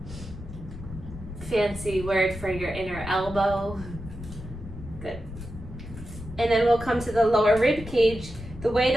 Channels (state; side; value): noise; left; rumble, 12 dB below the sound